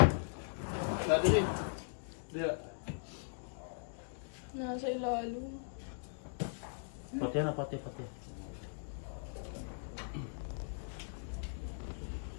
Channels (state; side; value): silent; right; digital silence